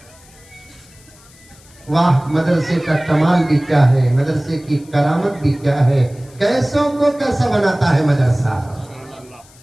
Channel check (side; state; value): left; noise; hiss, 26 dB below the sound